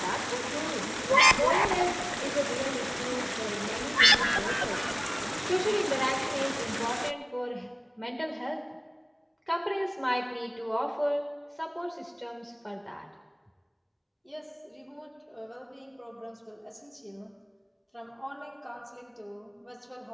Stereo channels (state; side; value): identical; both; correlation 1.00